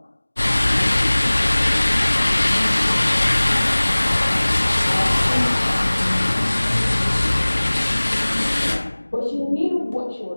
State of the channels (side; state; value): both; inverted; correlation -1.00